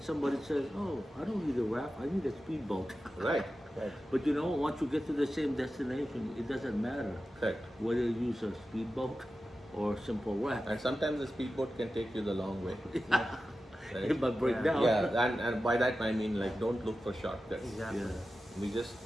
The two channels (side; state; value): both; normal; correlation 0.93